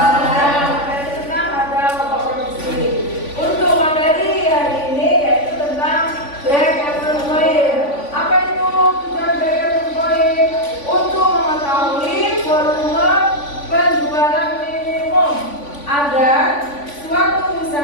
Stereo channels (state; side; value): late; right; 3.5 ms